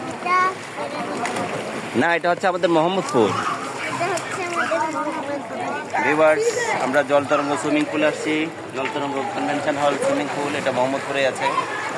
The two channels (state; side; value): identical; both; correlation 1.00